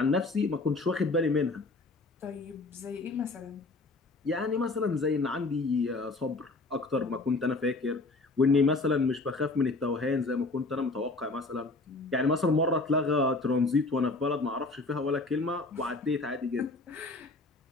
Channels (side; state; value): right; quieter; 3.3 dB